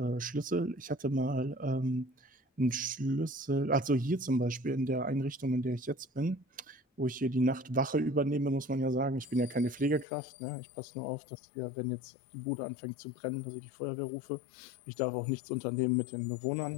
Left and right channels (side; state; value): right; drops out; at 10.1 s